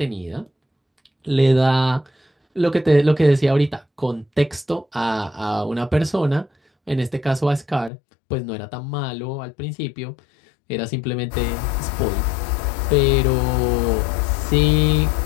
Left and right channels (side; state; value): right; drops out; at 7.9 s